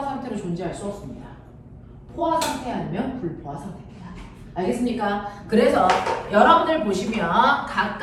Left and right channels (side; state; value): both; identical; correlation 1.00